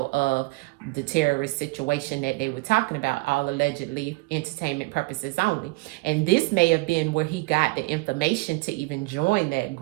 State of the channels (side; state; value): left; quieter; 23.3 dB